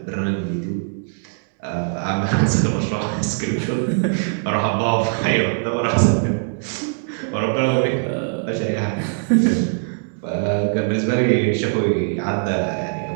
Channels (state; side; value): silent; left; digital silence